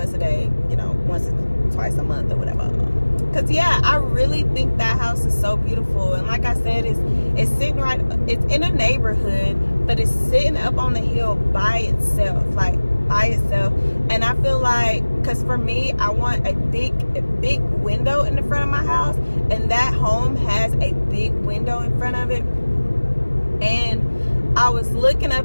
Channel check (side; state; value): both; inverted; correlation -1.00